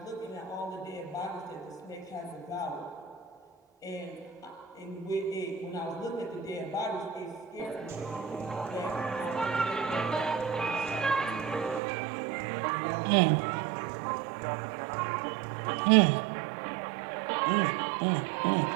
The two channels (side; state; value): left; drops out; at 11.8 s